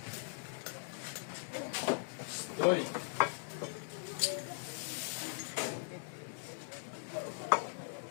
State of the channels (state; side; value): silent; right; digital silence